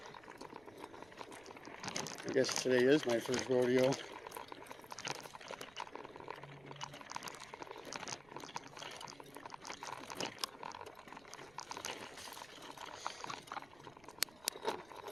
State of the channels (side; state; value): right; noise; rumble, 25 dB below the sound